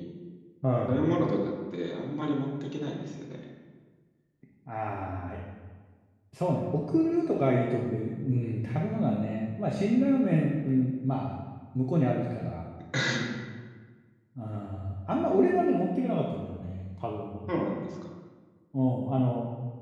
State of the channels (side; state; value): both; identical; correlation 1.00